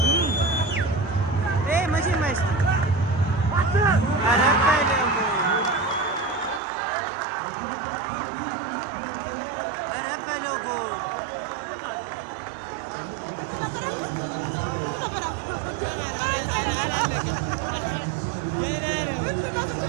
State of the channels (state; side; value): drops out; left; at 6.6 s